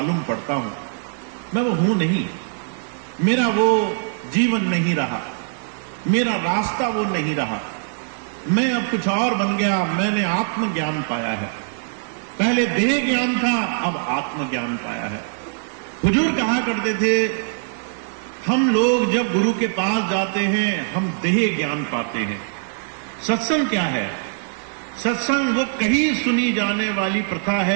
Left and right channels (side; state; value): left; silent; 64 dB below the other